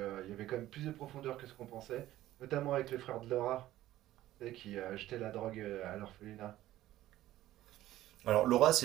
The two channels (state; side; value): quieter; left; 14.7 dB